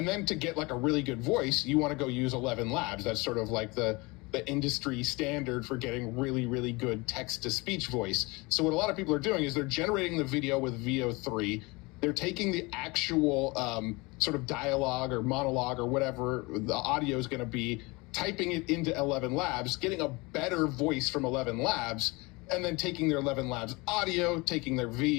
then to get like a really good voice, you want to go use 11 Labs. That's sort of like the industry standard for getting really, really good text-to-speech voice. So what a lot of people are doing is they're generating the video with VO3. They're taking the actual sort of dialogue or monologue or whatever the audio is going to be, typing it into 11 Labs, getting a better voice from 11 Labs, and then taking their 11 Labs audio, taking their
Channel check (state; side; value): quieter; right; 25.2 dB